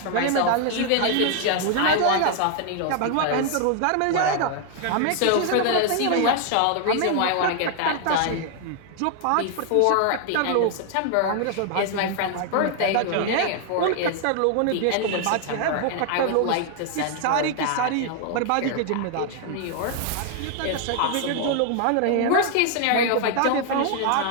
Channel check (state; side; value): different; both; correlation 0.00